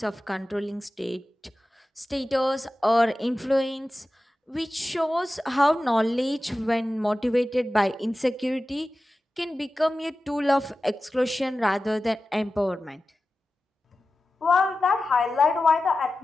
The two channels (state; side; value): normal; both; correlation 0.95